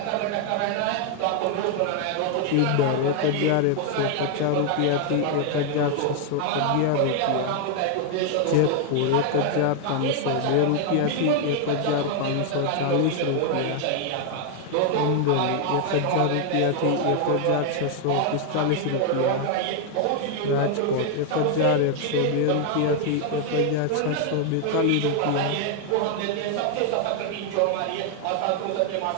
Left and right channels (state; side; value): different; both; correlation 0.00